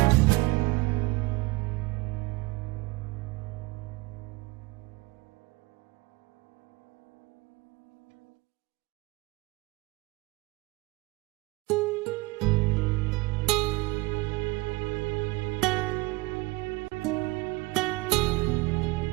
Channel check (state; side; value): quieter; left; 23.0 dB